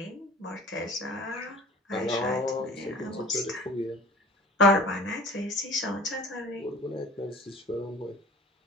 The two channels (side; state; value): both; normal; correlation 0.44